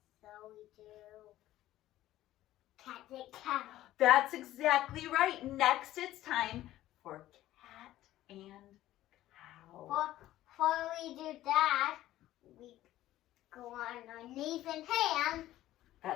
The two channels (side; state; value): right; quieter; 14.5 dB